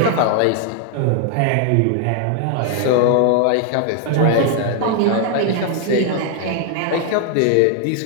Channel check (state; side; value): different; both; correlation 0.00